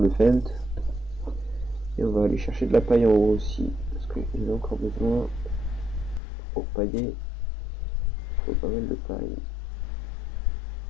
le fent. Et on va aller chercher de la paille en haut aussi. Parce qu'il en a encore besoin. Pour pailler, il faut pas mal de paille.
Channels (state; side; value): drops out; right; at 6.2 s